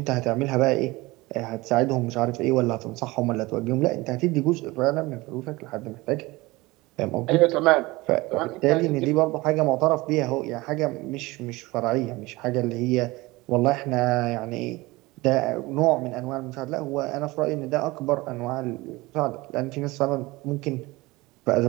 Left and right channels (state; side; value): quieter; left; 21.5 dB